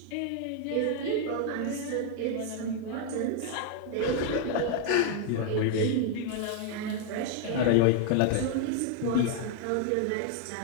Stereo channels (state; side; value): different; both; correlation 0.00